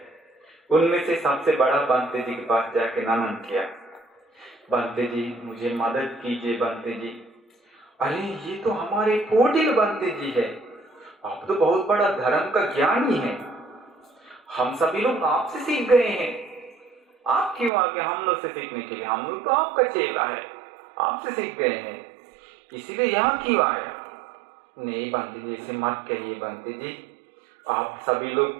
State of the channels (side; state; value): left; drops out; at 17.7 s